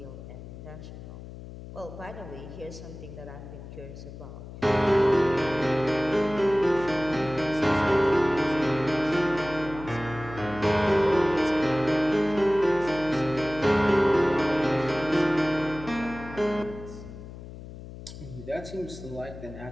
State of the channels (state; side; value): noise; left; hum, 13 dB below the sound